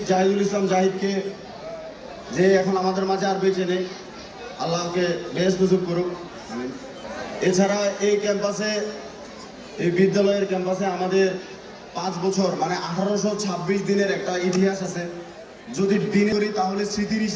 জাহিদুল ইসলাম জাহিদকে, যে এখন আমাদের মাঝে আর বেঁচে নেই, আল্লাহকে বেহেশত নসিব করুক। এছাড়া এই ক্যাম্পাসে, এই বিদ্যালয়ের ক্যাম্পাসে আমাদের 5 বছর মানে 1826 দিনের একটা ইতিহাস আছে। যদি দিন করি তাহলে স্মৃতির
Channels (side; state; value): both; identical; correlation 1.00